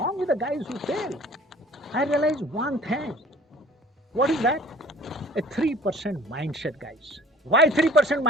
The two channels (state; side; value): normal; both; correlation 0.49